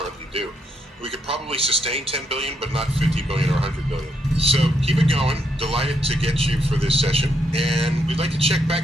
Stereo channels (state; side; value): normal; both; correlation 0.77